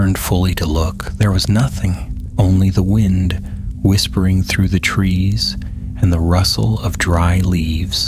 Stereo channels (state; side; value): identical; both; correlation 1.00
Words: fully to look, there was nothing, only the wind whispering through the trees and the rustle of dry